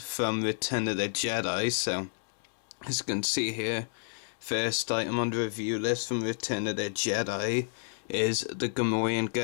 Return of the Jedi. So as you can see here, first item on the review list from Return of the Jedi is the Gamorrean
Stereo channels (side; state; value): right; silent; digital silence